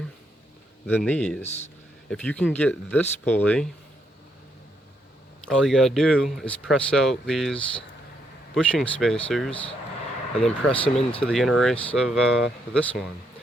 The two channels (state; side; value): normal; both; correlation 0.76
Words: than these. If you can get this pulley, all you gotta do is press out these bushing spacers and then press them into the inner race of this one.